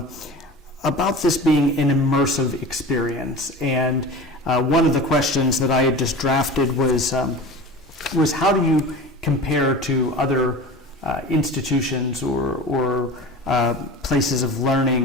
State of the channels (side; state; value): both; normal; correlation 0.34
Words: this being an immersive experience, and one of the questions that I had just drafted was how do you compare to other institutions or places of